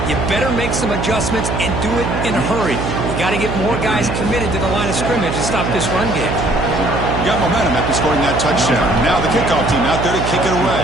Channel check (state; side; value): noise; right; hum, 3 dB below the sound